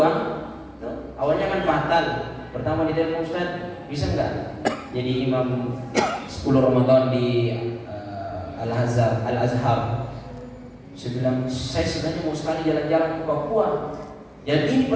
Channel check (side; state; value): both; identical; correlation 1.00